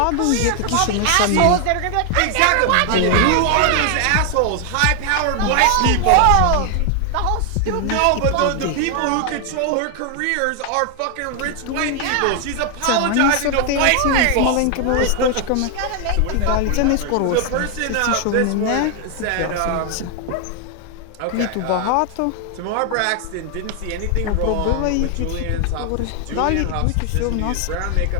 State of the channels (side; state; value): both; different; correlation 0.00